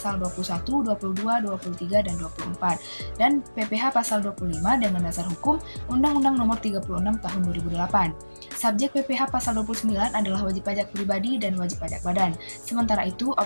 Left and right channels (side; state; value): both; inverted; correlation -1.00